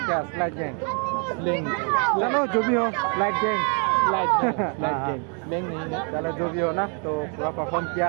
क्या स्लाइड गैंग चलो जो भी हो स्लाइड गैंग स्लाइड गैंग नहीं है चलो जो भी हो ना तो पूरा परफॉर्म किया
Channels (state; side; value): quieter; left; 38.9 dB